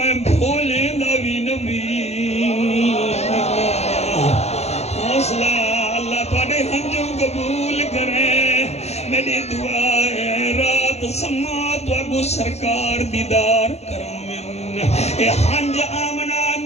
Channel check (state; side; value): late; right; 0.31 ms